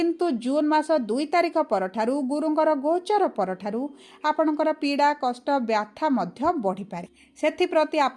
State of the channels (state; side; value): identical; both; correlation 1.00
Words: ଜୁନ୍ ମାସ 2 ତାରିଖ ପରଠାରୁ, ଗୁରୁଙ୍କର ଗୋଚର ପରଠାରୁ ଆପଣଙ୍କର ପୀଡ଼ା, କଷ୍ଟ, ବ୍ୟଥା ମଧ୍ୟ ବଢ଼ିପାରେ। ସେଥିପ୍ରତି